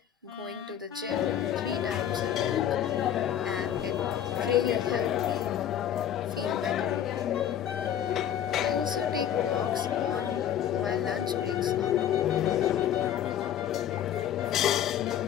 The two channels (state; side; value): quieter; right; 10.1 dB